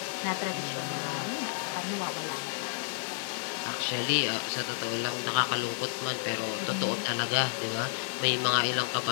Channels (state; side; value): silent; right; 57 dB below the other